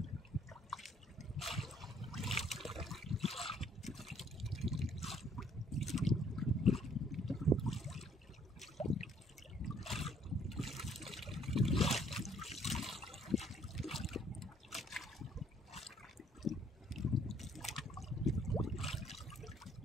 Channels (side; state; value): both; normal; correlation 0.64